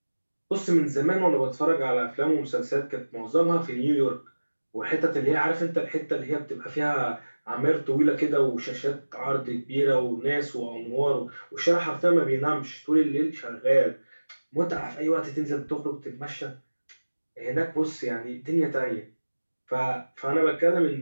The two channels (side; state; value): both; inverted; correlation -1.00